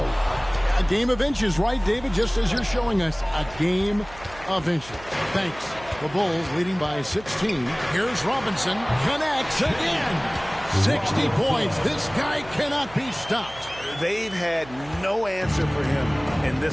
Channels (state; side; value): noise; right; hum, 19 dB below the sound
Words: a game of inches, right, David? Just as you're showing us, a game of inches. Thanks. The Bulls leading by 16. Here's Robinson. Connects again. 60 points. This guy cannot be stopped. They've had no answer for him in